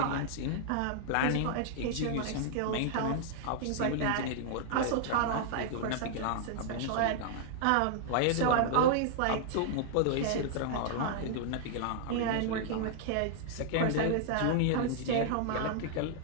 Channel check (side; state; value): both; different; correlation -0.01